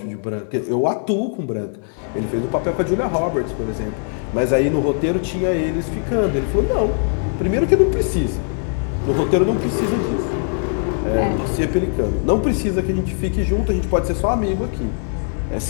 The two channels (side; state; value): right; silent; 58 dB below the other